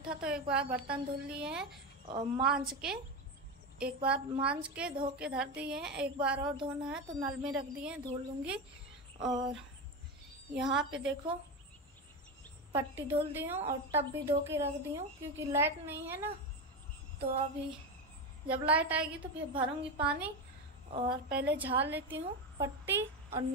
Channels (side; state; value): both; normal; correlation 0.16